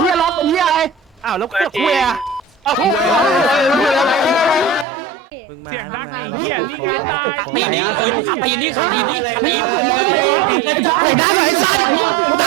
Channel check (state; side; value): drops out; left; at 4.9 s